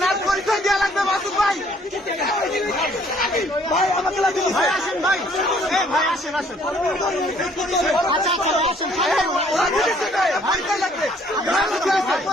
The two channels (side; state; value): both; normal; correlation 0.61